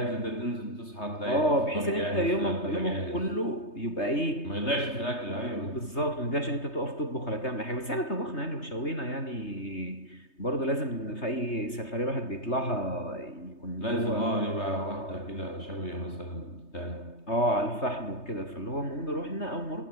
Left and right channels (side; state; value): right; late; 3.3 ms